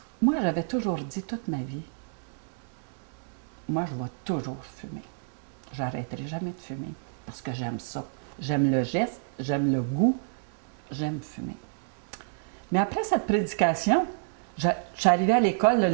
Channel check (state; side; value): silent; left; digital silence